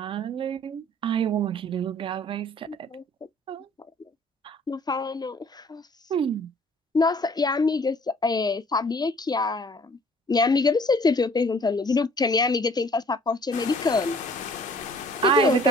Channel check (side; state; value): both; normal; correlation 0.55